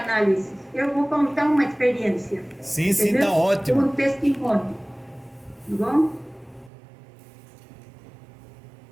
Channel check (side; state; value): left; drops out; at 6.7 s